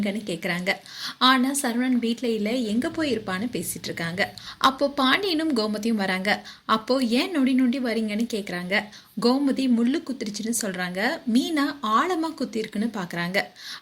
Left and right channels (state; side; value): identical; both; correlation 1.00